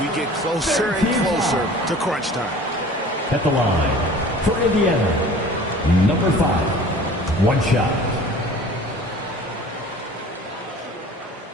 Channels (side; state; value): both; normal; correlation 0.45